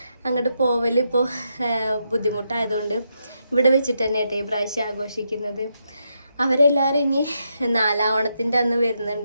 അങ്ങോട്ട് പോവൽ ഇപ്പോൾ ബുദ്ധിമുട്ടായതുകൊണ്ട് ഇവിടെ വെച്ചിട്ട് തന്നെ ഈ പ്രാവശ്യം ആഘോഷിക്കുന്നത്. അവരെല്ലാവരും ഇനി 4-ാം ഓണത്തിൻ്റെ അന്ന്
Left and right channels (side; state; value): both; inverted; correlation -0.81